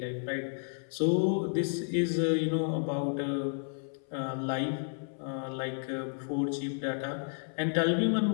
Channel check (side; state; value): right; silent; 57 dB below the other